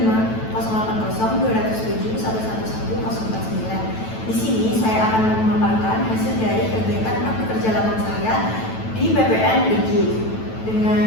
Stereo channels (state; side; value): late; right; 9.1 ms